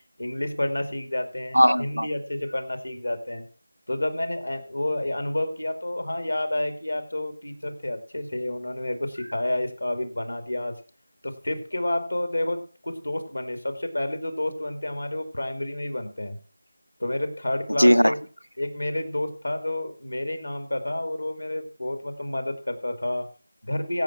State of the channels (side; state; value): both; inverted; correlation -0.99